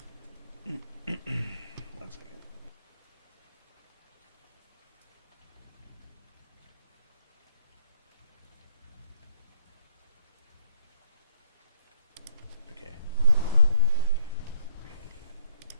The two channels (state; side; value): inverted; both; correlation -0.67